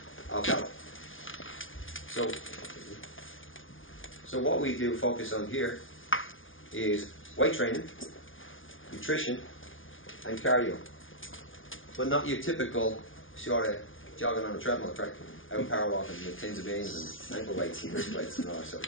of health. So what we do focus on here is weight training, nutrition, and cardio. But not your typical sort of jogging on a treadmill track, out power walking with tins of beans and ankle weights and wrist weights and all that sort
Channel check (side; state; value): right; late; 0.58 ms